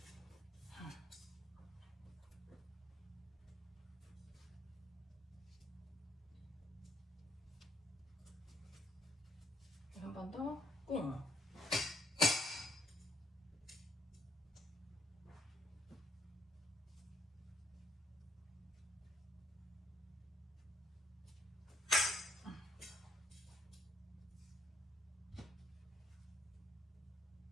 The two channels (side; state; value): both; normal; correlation 0.71